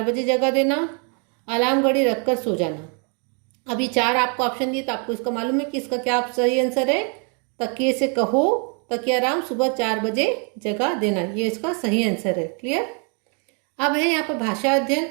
बजे जगा देना, अलार्म घड़ी रख कर सो जाना। अभी 4 आपको ऑप्शन दिए तो आपको इसका मालूम है कि इसका क्या सही आंसर है। तकिए से कहो तकिया राम सुबह 4 बजे जगा देना, ये इसका सही आंसर है। क्लियर। अब है यहाँ पर भाषा अध्ययन।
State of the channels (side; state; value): left; quieter; 37.7 dB